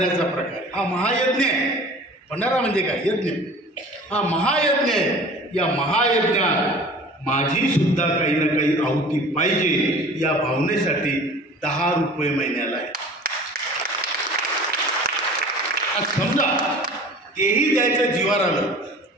प्रकार, हा महायज्ञ आहे. भंडारा म्हणजे काय, यज्ञ, हा महायज्ञ आहे. या महायज्ञात माझी सुद्धा काही ना काही आहुती पाहिजे, या भावनेसाठी 10 रुपये महिन्याला आहे. आज समजा तेही द्यायचं जीवार आलं,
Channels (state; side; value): normal; both; correlation 0.43